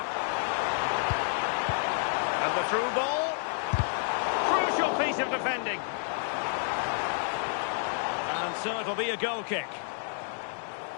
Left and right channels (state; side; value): silent; right; 58 dB below the other